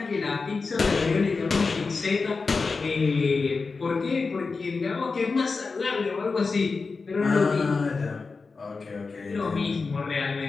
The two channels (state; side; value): quieter; right; 4.3 dB